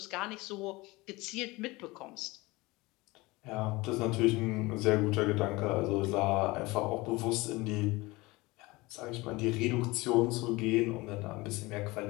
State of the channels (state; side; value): quieter; right; 22.2 dB